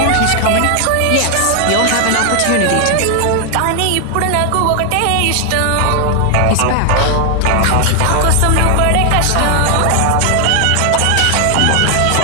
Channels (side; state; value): both; different; correlation 0.00